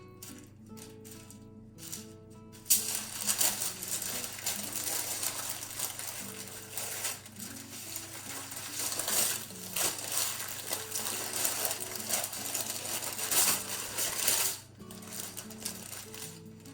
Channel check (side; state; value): both; identical; correlation 1.00